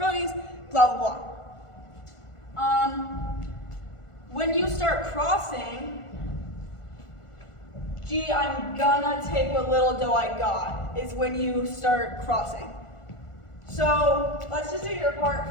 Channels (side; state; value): right; late; 1.4 ms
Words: blah, blah, blah. When you start crossing, gee, I'm gonna take what little dough I got, is when you start crossing. So let's just do your